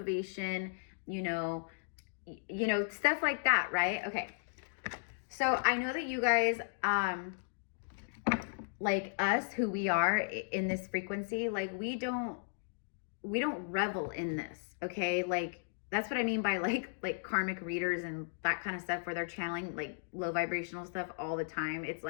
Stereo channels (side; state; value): right; silent; digital silence